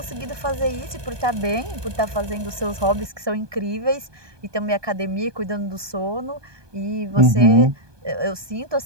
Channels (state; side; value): late; left; 1.2 ms